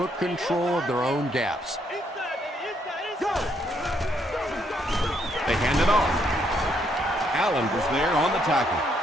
control of their own gaps. They hand it off. Allen was there on the tackle.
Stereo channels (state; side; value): normal; both; correlation 0.73